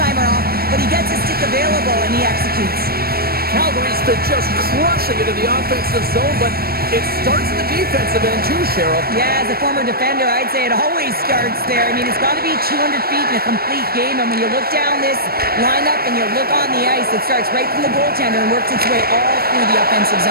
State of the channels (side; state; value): left; late; 0.44 ms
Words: off, but he gets his stick available and he executes. Calgary's been just crushing it in the offensive zone, but It starts in the defensive end too, Cheryl. Yeah, as a former defender, I'd say it always starts there. I mean, it's got to be 200 feet in a complete game, and when you look down this lineup and you look on the ice, it starts right from the goaltender and works its way all through the offensive